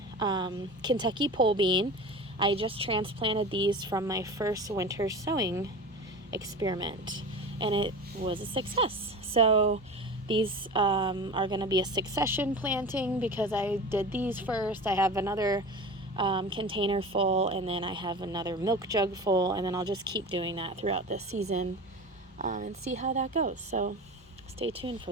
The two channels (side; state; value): both; normal; correlation 0.32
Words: Kentucky pole bean. I just transplanted these from my first winter sowing experiment, and it was a success. So these are going to be a succession planting because I did these first. I have another container full, and then I have another milk jug full, and then I'll just keep doing that throughout this season and see how that goes. So stay tuned